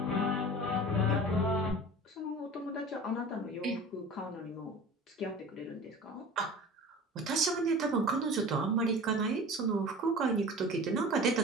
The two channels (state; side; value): normal; both; correlation 0.38